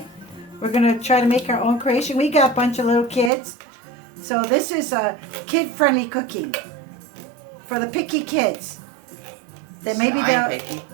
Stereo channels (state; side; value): drops out; left; at 3.3 s